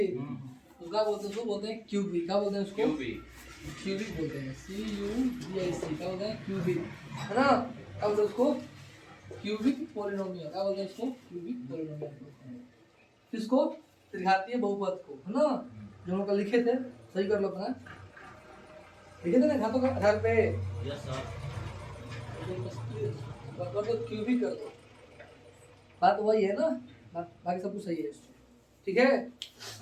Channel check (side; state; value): both; identical; correlation 1.00